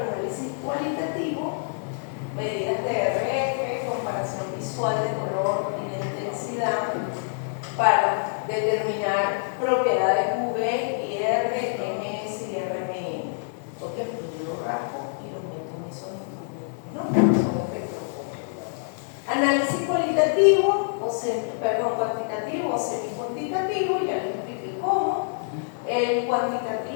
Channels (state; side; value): silent; right; 61 dB below the other